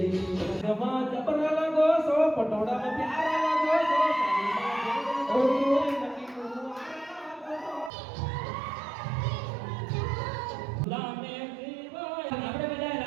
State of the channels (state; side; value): drops out; left; at 7.9 s